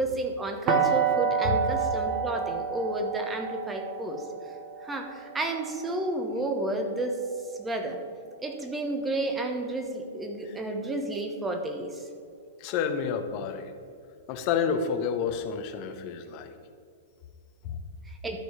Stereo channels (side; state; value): both; normal; correlation 0.07